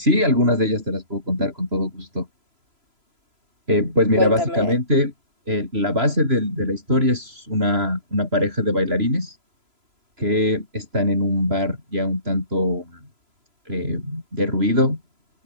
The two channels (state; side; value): late; left; 3.0 ms